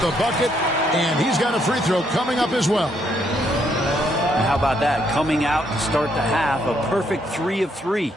bucket, and he's got a free throw coming up as well. And how about that? Coming out to start the half, a perfect 3 of 3.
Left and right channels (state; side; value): normal; both; correlation 0.72